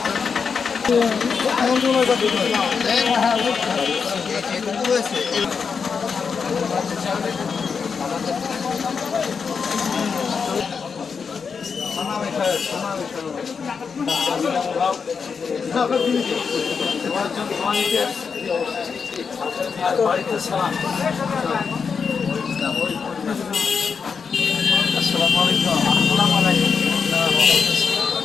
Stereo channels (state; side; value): quieter; right; 5.8 dB